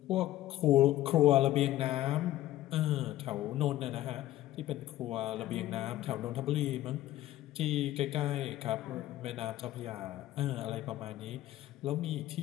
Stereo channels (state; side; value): quieter; right; 14.8 dB